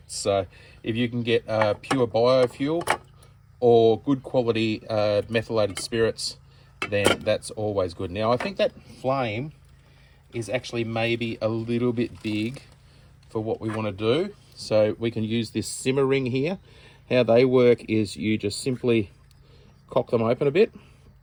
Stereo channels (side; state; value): both; identical; correlation 1.00